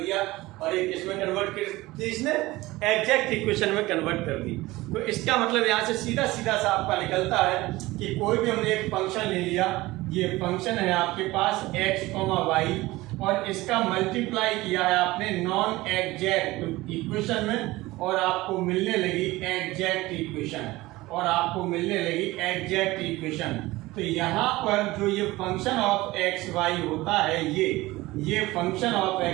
और एक इसमें कन्वर्ट कर दी, इसने एग्जैक्ट इक्वेशन में कन्वर्ट कर दी। तो इसका मतलब यहाँ से सीधा सीधा सा आपका निकलता है कि कोई भी हमने एक फंक्शन ले लिया, ये फंक्शन है आपके पास x, y, और इसका मल्टीप्लाई किया है आपने नॉन एग्जैक्ट इक्वेशन में, और आपको मिलने लगी एग्जैक्ट इक्वेशन, और आपको मिलने लगी एग्जैक्ट इक्वेशन। तो यहाँ पर जो ये फंक्शन ऑफ एक्स वाई होता है, ये फंक्शन ऑफ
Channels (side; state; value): left; quieter; 19.3 dB